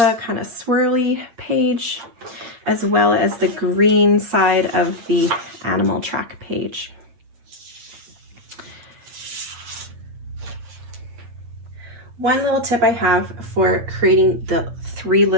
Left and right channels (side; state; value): left; late; 8.5 ms